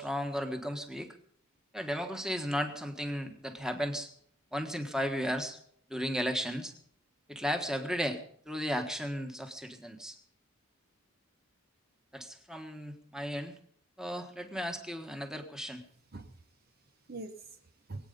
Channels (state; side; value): normal; both; correlation 0.82